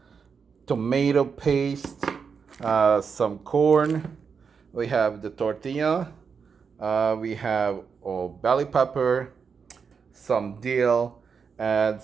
tomato paste, some corn. We have the tortilla. We have bell pepper, some dill, and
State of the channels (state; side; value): quieter; left; 6.0 dB